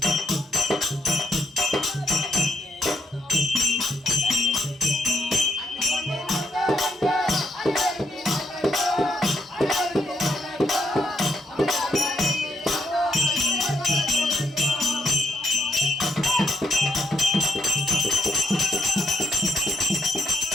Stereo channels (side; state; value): both; normal; correlation 0.76